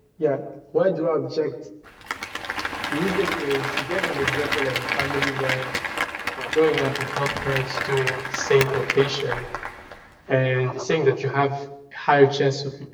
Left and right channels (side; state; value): both; identical; correlation 1.00